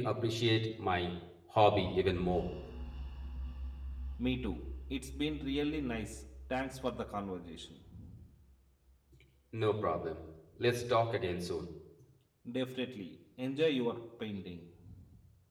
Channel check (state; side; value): identical; both; correlation 1.00